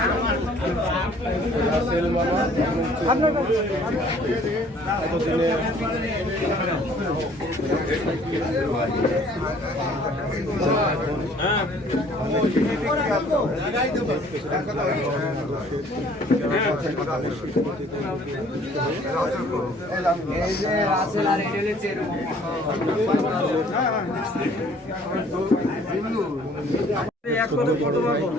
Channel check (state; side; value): normal; both; correlation 0.56